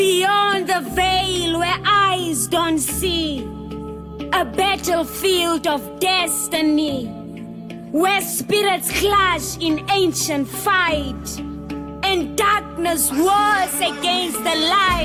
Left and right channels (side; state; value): both; identical; correlation 1.00